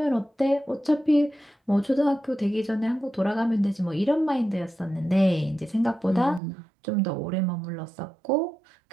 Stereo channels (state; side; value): drops out; left; at 6.4 s